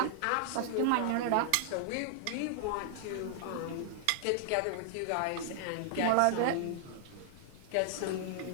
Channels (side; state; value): both; different; correlation -0.01